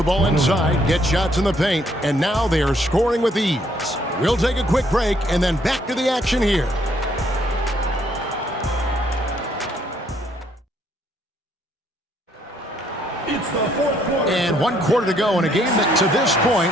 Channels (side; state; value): both; normal; correlation 0.68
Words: ball inside, get shots in the paint, and now they are scoring with ease. We'll take a quick break and then back to the action here. It's the fourth quarter. And 1 quarter to go in a game that to this point